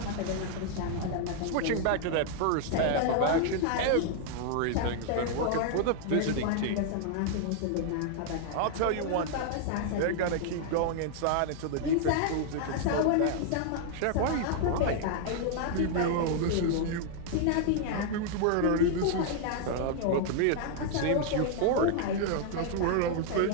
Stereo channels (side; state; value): both; different; correlation 0.00